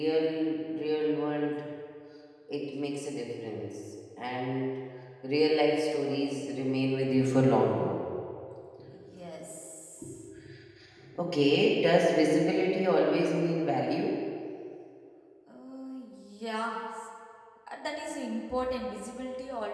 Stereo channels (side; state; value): both; identical; correlation 1.00